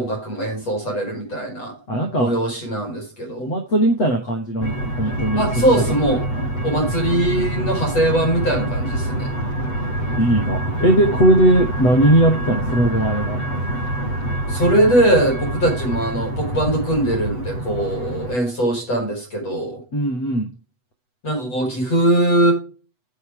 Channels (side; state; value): right; late; 8.1 ms